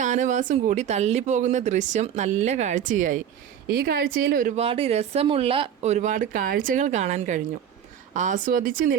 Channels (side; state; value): left; quieter; 9.2 dB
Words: കൂടി തള്ളിപ്പോകുന്ന ദൃശ്യം നല്ല കാഴ്ചയായി. ഈ കാഴ്ചയിൽ ഒരുപാട് രസമുള്ള ഒരുപാട് കാഴ്ചകൾ കാണാൻ കഴിഞ്ഞു. ആസ്വദിച്ച്